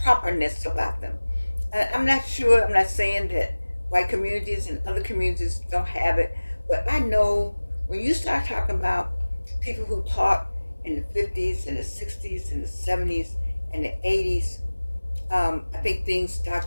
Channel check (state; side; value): inverted; both; correlation -1.00